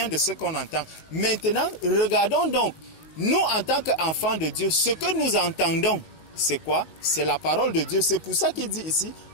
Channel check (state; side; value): late; right; 19 ms